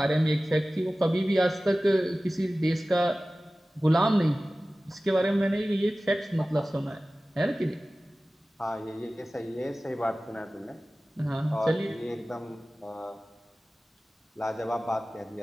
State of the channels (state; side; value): normal; both; correlation 0.97